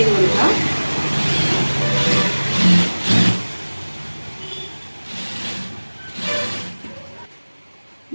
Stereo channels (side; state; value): both; inverted; correlation -1.00